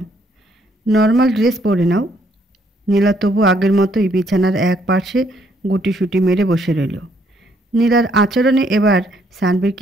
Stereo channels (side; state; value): both; normal; correlation 0.69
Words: নর্মাল ড্রেস পরে নাও। নীলা তবু আগের মতোই বিছানার এক পার্শ্বে গুটিসুটি মেরে বসে রইল। নীলার আচরণে এবার সানভির